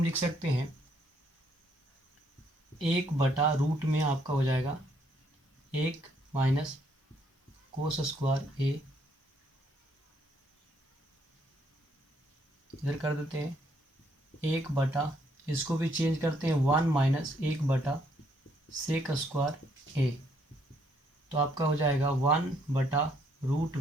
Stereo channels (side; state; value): both; normal; correlation 0.70